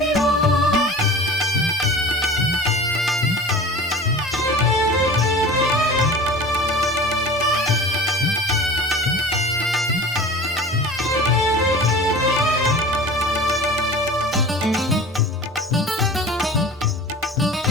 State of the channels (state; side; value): normal; both; correlation 0.38